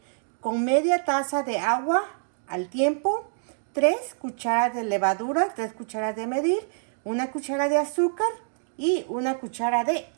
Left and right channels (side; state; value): left; silent; digital silence